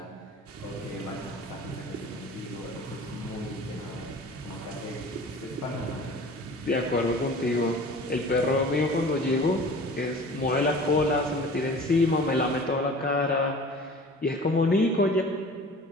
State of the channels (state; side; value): normal; both; correlation 0.42